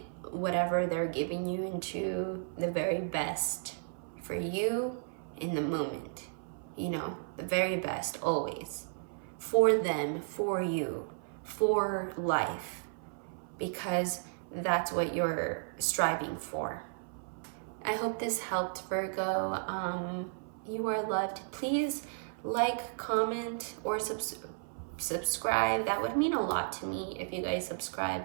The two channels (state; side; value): silent; left; 55 dB below the other